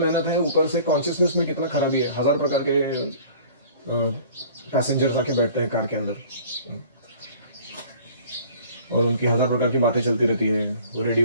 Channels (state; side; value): inverted; both; correlation -0.49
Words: मेहनत है, ऊपर से कॉन्शियसनेस में कितना खराबी है. 1000 प्रकार के पैसेंजर्स आके बैठते हैं कार के अंदर और उनकी 1000 प्रकार की बातें चलती रहती है. वो